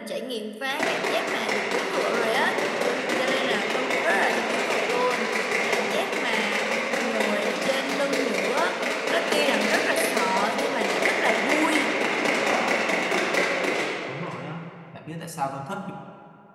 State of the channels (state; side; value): identical; both; correlation 1.00